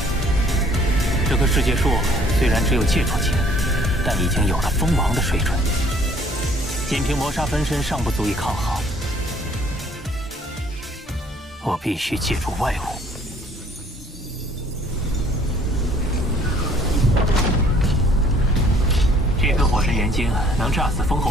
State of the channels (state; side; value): normal; both; correlation 0.59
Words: 这棵世界树虽然只有戒除级，但已经有了封王的水准。仅凭魔杀分身尚不足以抗衡，我必须借助外物。这颗火神元晶能炸死封侯